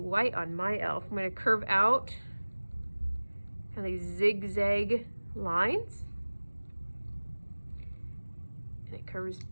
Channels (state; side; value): inverted; both; correlation -1.00